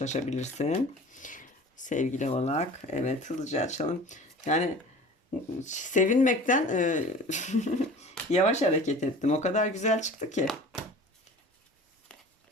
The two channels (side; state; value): both; normal; correlation 0.41